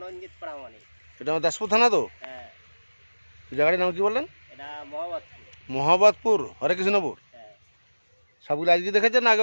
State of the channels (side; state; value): both; inverted; correlation -1.00